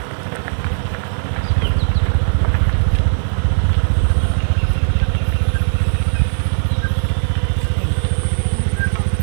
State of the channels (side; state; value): left; silent; 68 dB below the other